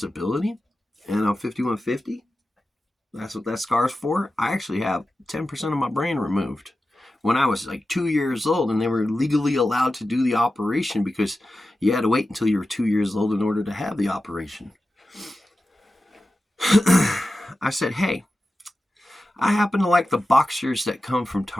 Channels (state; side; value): normal; both; correlation 0.93